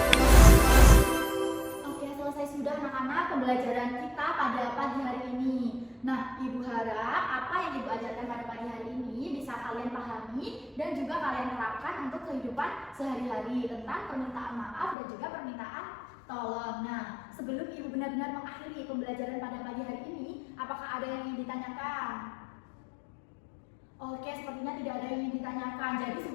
Oke, selesai sudah anak-anak pembelajaran kita pada pagi hari ini. Nah, Ibu harap apa yang Ibu ajarkan pada pagi hari ini bisa kalian pahami dan juga kalian terapkan untuk kehidupan sehari-hari tentang permintaan maaf dan juga permintaan tolong. Nah, sebelum Ibu benar-benar mengakhiri pembelajaran pada pagi hari ini, apakah ada yang ingin ditanyakan? Oke, sepertinya tidak ada yang ingin ditanyakan. Jadi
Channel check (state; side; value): drops out; right; at 15.0 s